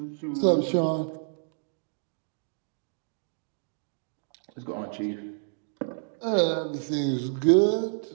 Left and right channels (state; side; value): silent; left; digital silence